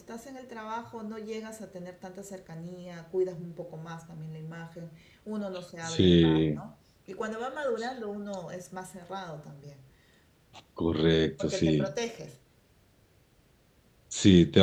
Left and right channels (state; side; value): identical; both; correlation 1.00